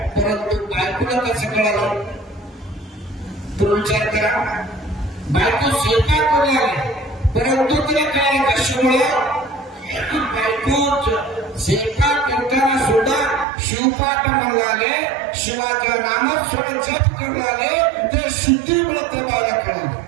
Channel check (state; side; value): drops out; left; at 13.5 s